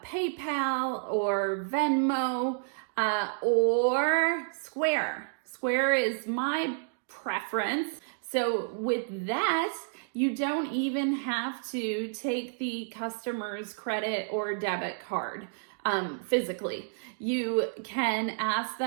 or Venmo or Square. Square is my preference. So with that, you don't even have to take the customer's credit or debit card physically. You can ask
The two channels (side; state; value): left; silent; digital silence